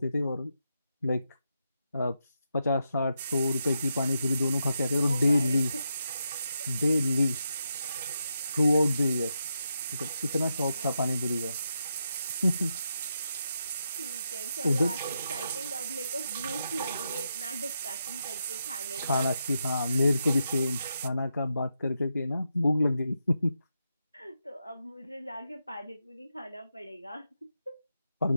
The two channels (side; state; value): both; inverted; correlation -0.85